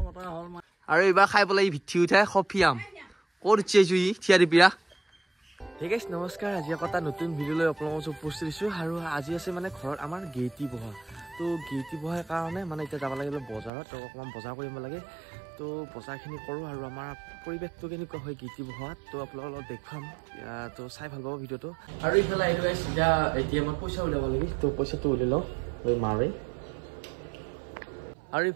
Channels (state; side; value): drops out; left; at 13.7 s